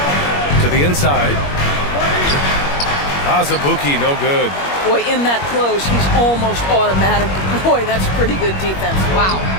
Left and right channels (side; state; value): right; late; 21 ms